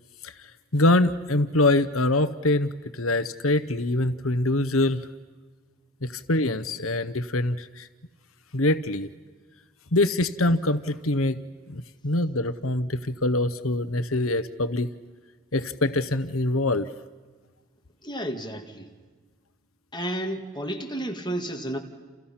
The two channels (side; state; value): both; normal; correlation 0.33